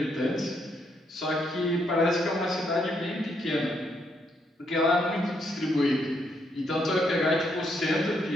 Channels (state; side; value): normal; both; correlation 0.75